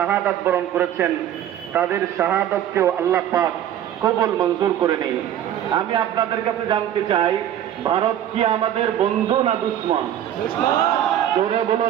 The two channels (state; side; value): quieter; left; 11.0 dB